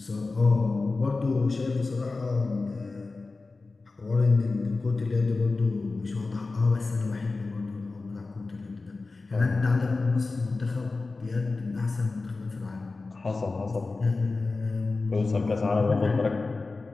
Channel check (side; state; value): right; quieter; 3.7 dB